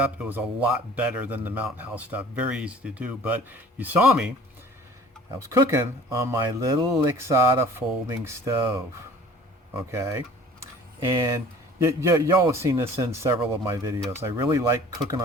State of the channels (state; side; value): normal; both; correlation 0.48